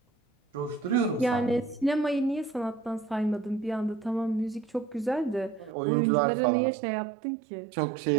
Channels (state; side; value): drops out; left; at 5.8 s